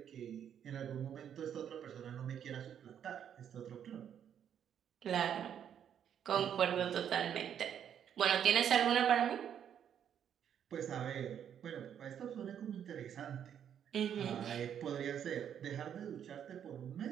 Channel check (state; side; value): quieter; left; 9.0 dB